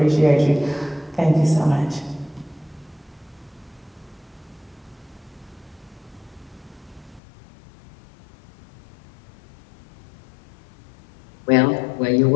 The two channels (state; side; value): drops out; right; at 7.2 s